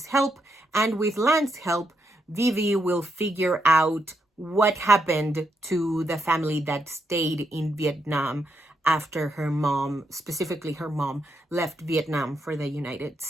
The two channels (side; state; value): both; normal; correlation 0.80